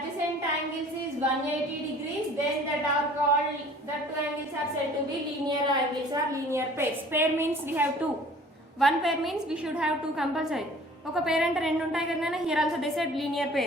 angles is 180 degrees. Then that are called, the two angles are said to be linear angles or linear pairs. Pair means we have two. One pair means we should have two compulsory. ఒక పేర్ అంటే రెండు ఉంటాయి కదా. Here also they said linear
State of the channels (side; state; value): both; normal; correlation 0.50